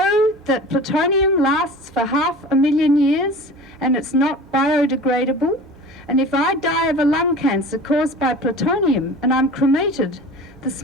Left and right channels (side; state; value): both; normal; correlation 0.38